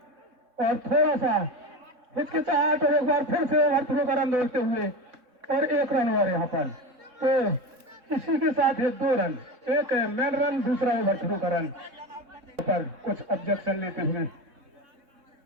और थोड़ा सा हिचकिचाहट और एक बार फिर से ओवरथ्रो का रन दौड़ते हुए और 1 रन और यहाँ पर तो इसी के साथ है 2 रन, एक मैन रन दूसरा ओवरथ्रो का रन पर कुछ ऑब्जेक्शन लेते हुए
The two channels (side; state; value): left; late; 3.6 ms